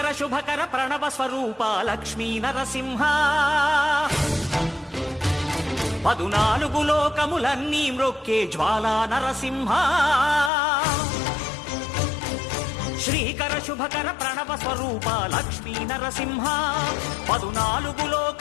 శుభకర ప్రణవ స్వరూప లక్ష్మీ నరసింహ 14 లోకములన్నీ మ్రొక్కే జ్వాలా నరసింహ శ్రీకర శుభకర ప్రణవ స్వరూప లక్ష్మీ నరసింహ 14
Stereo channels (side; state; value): right; drops out; at 10.5 s